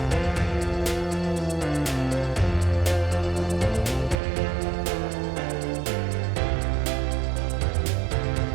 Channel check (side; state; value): left; drops out; at 4.2 s